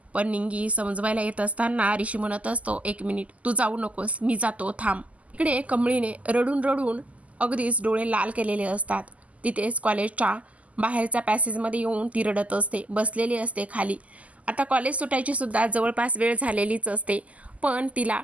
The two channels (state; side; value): late; left; 0.070 ms